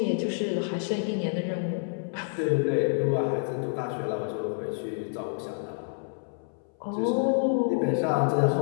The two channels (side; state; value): right; silent; 59 dB below the other